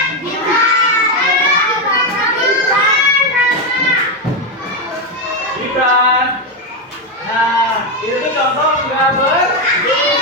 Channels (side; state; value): both; normal; correlation 0.06